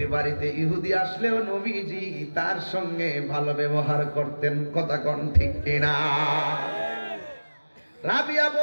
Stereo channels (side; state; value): both; inverted; correlation -1.00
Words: বাড়িতে ইহুদি আসলেও নবীজি তার সঙ্গে ভালো ব্যবহার করতেন। কথা কোন ঠিক কিনা? রাবিয়া